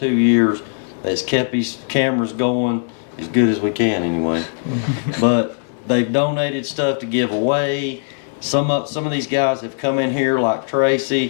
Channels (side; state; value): right; silent; digital silence